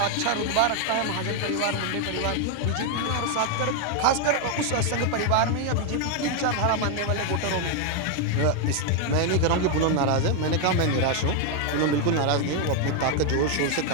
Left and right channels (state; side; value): different; both; correlation 0.01